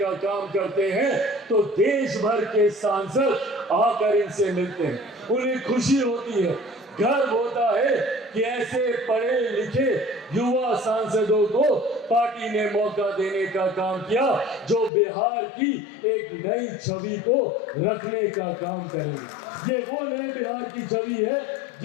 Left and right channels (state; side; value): drops out; right; at 14.9 s